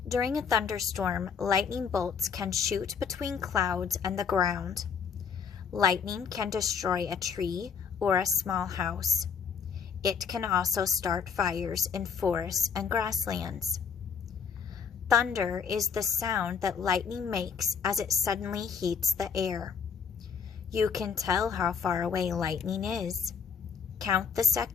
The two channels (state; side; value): quieter; right; 6.4 dB